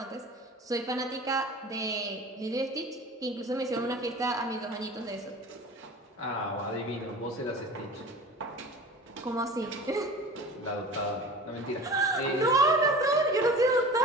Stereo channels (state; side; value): normal; both; correlation 0.38